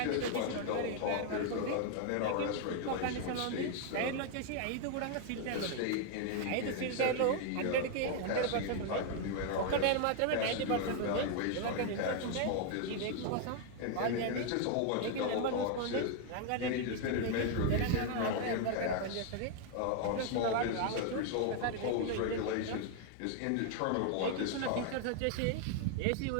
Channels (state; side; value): different; both; correlation 0.00